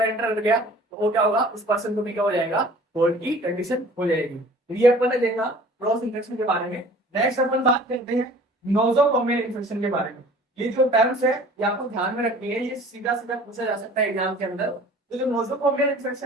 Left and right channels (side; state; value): both; normal; correlation 0.48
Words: एंटर कर गया, तो वो क्या होगा? उस पर्सन को भी क्या हो जाएगा? कोल्ड की कंडीशन हो जाएगी। तो ये अपन ने देखा क्रॉस इन्फेक्शन के बारे में। नेक्स्ट अपन बात करते हैं नोजोकोमियल इन्फेक्शन के बारे में। ये जो टर्म्स है ये आपको ध्यान में रखनी है, ये सीधा सीधा पूछा जा सकता है एग्जाम के अंदर। तो जो नोजोकोमियल